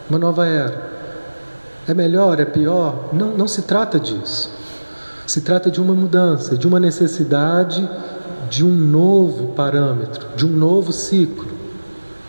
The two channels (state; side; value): inverted; both; correlation -1.00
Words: uma nova era. É melhor, é pior? Não se trata disso. Se trata de uma mudança, de uma necessidade de um novo parâmetro, de um novo ciclo.